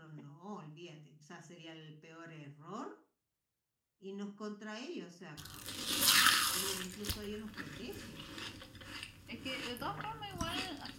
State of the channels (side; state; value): both; identical; correlation 1.00